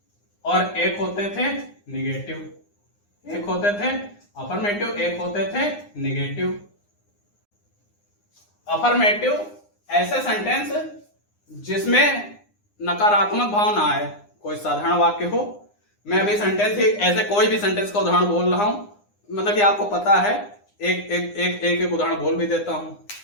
और एक होते थे निगेटिव। एक होते थे अफर्मेटिव, एक होते थे निगेटिव। अफर्मेटिव ऐसे सेंटेंस जिसमें नकारात्मक भाव ना आए, कोई साधारण वाक्य हो। मैं अभी सेंटेंस ऐसे कोई भी सेंटेंस का उदाहरण बोल रहा हूं, मतलब कि आपको पता है, एक उदाहरण बोल भी देता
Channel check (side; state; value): right; late; 9.8 ms